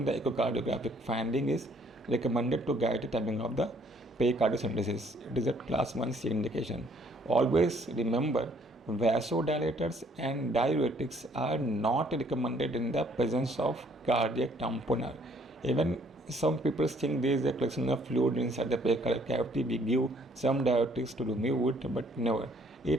the echocardiographic finding, is recommended to guide the timing of the pericardial synthesis. It is a class 1C indication. Always remember, vasodilators and diuretics are not recommended in the presence of cardiac tamponade. Even some people think there is a collection of fluid inside the pericardial cavity. We give some diuretics to remove it, but never.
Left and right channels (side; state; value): both; normal; correlation 0.63